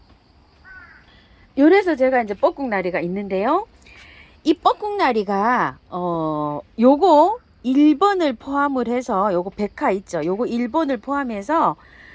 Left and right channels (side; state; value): both; identical; correlation 1.00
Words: 요래서 제가 이제 뻐꾹나리가 있는데요. 이 뻐꾹나리가 요거 1번을 포함을 해서 요거 백화 있죠. 요거 1번을 포함해서